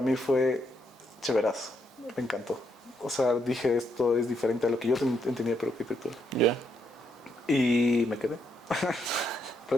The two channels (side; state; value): both; normal; correlation 0.76